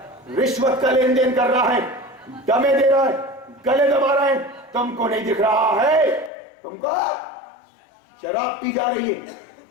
رشوت کا لین دین کر رہا ہے، دمے دے رہا ہے، گلے دبا رہا ہے، تم کو نہیں دکھ رہا ہے؟ تم کو شراب پی جا رہی ہے،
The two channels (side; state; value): right; drops out; at 6.3 s